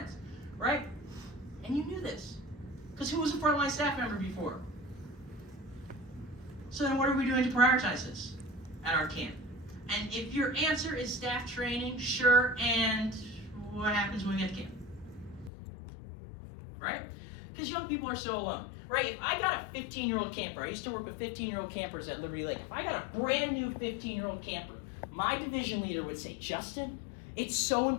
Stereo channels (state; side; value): drops out; right; at 15.5 s